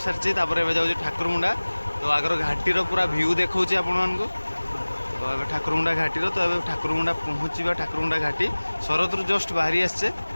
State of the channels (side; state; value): both; inverted; correlation -1.00